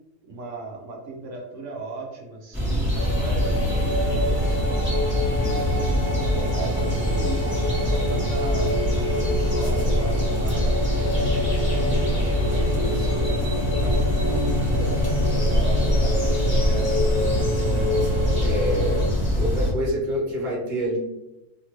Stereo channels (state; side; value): normal; both; correlation 0.45